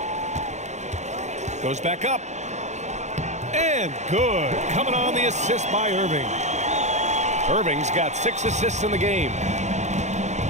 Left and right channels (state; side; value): late; left; 0.33 ms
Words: Goes back up. And good. Coming on the assist by Irving. Irving's got 6 assists in the game.